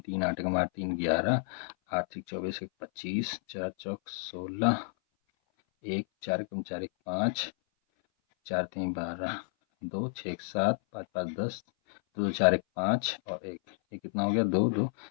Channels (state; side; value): silent; right; 56 dB below the other